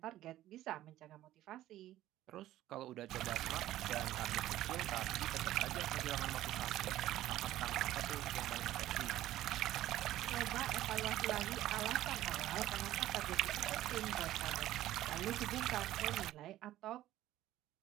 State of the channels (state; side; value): quieter; left; 14.2 dB